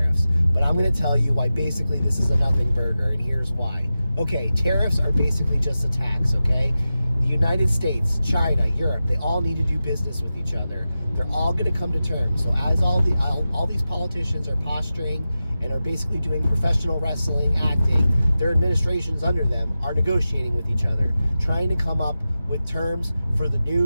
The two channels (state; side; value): inverted; both; correlation -0.93